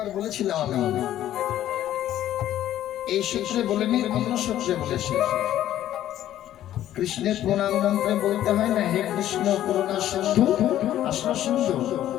বলেছিলাম আমি, এই সূত্রে বলেনি, অন্য সূত্রে বলেছি। কৃষ্ণের প্রণাম মন্ত্রে বলতে হয় না, হে কৃষ্ণ করুণা সিন্ধু আসন সিন্ধু।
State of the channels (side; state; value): right; quieter; 12.4 dB